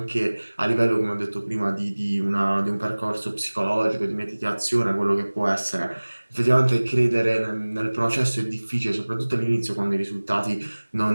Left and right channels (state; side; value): inverted; both; correlation -1.00